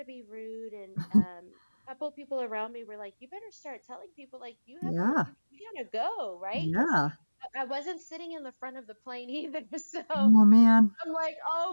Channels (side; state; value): both; inverted; correlation -1.00